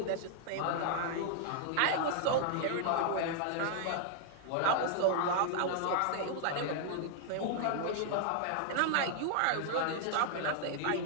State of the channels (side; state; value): both; different; correlation 0.00